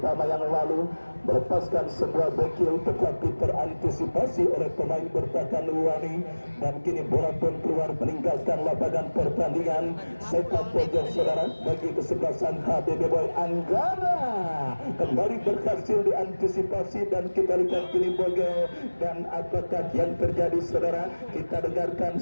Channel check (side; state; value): both; inverted; correlation -1.00